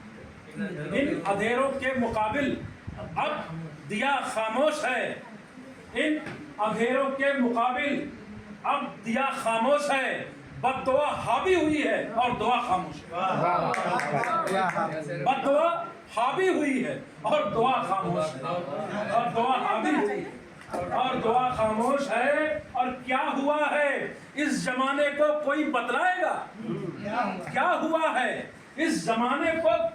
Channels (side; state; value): both; identical; correlation 1.00